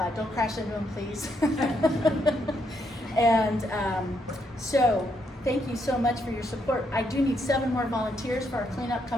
don't crash into them, please. And so thank you so much for your support. I do need 7 more volunteers for our cleanup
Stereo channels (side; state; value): both; normal; correlation 0.76